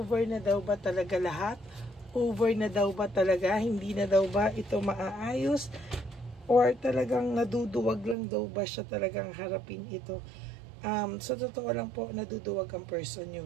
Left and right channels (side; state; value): left; drops out; at 8.2 s